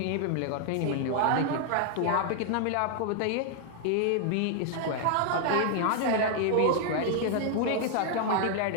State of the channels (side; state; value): both; different; correlation 0.00